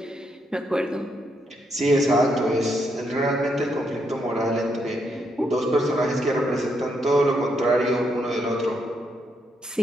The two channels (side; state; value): both; normal; correlation 0.78